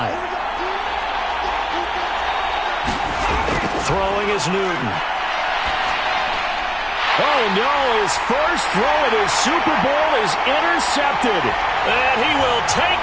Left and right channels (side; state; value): both; identical; correlation 1.00